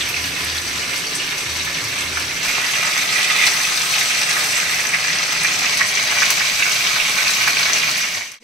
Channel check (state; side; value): normal; both; correlation 0.42